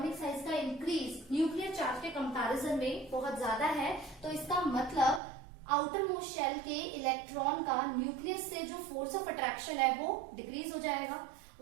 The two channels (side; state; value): left; drops out; at 5.2 s